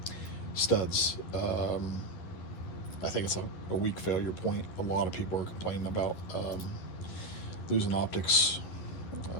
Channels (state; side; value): late; right; 11 ms